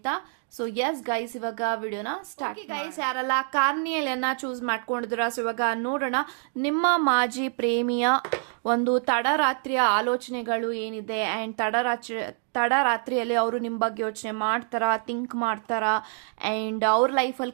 ಸೊ ಎಸ್ ಗೈಸ್, ಇವಾಗ ವಿಡಿಯೋನ ಸ್ಟಾರ್ಟ್. ಗೈಸ್, ಯಾರೆಲ್ಲ ಕಾರ್ನಿಯಲಿಯನ್ನ ಚೂಸ್ ಮಾಡ್ಕೊಂಡಿದ್ದೀರಾ, ಸೊ ಇವಾಗ ನೋಡೋಣ ನಿಮ್ಮ ಮಾಜಿ ಪ್ರೇಮಿಯ ಒಂದು ತಡರಾತ್ರಿಯ ಆಲೋಚನೆಗಳು ಏನಿದೆ ಅಂಡ್ ತಡರಾತ್ರಿಯಲ್ಲಿ ಅವರು ನಿಮ್ಮ ಬಗ್ಗೆ ಯೋಚನೆ ಮಾಡ್ತಾರಾ, ಥಿಂಕ್ ಮಾಡ್ತಾರಾ, ಅಂಡ್ ಅವ್ರ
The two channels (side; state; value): left; silent; 56 dB below the other